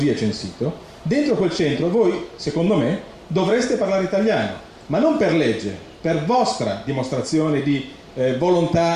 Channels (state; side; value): identical; both; correlation 1.00